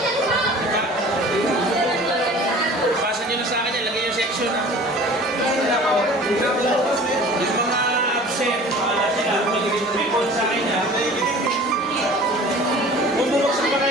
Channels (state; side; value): normal; both; correlation 0.44